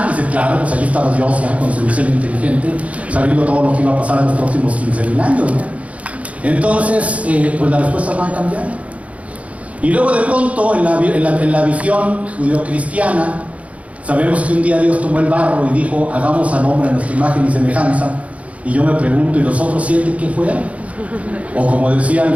Y dice, claro, pues allí estaba Dios ya con su diseño inteligente, sabiendo todo lo que iba a pasar en los próximos 15,000 años, ¿no? Entonces, pues las respuestas van a cambiar. Y luego de pronto, en la visión judeocristiana, sabemos que un día Dios tomó el barro y dijo, hagamos al hombre a nuestra imagen y semejanza. Y yo me pregunto, ¿y los otros 7 qué fueron? O como decía al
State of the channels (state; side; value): late; left; 0.066 ms